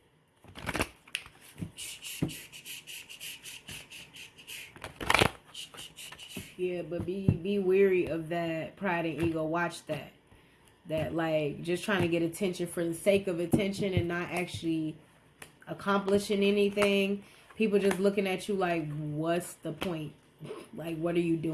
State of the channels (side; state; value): both; identical; correlation 1.00